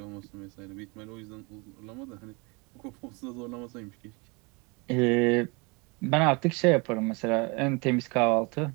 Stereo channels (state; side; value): quieter; left; 29.2 dB